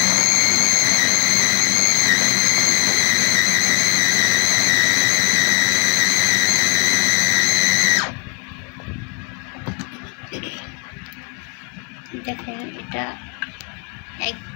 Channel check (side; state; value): right; quieter; 39.4 dB